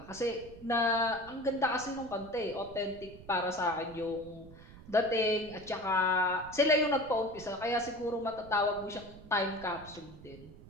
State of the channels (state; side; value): noise; right; rumble, 18 dB below the sound